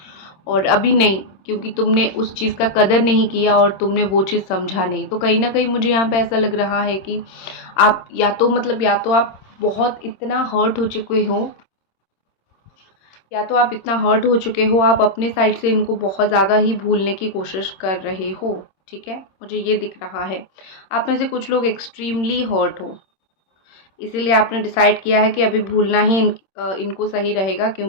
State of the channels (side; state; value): right; late; 26 ms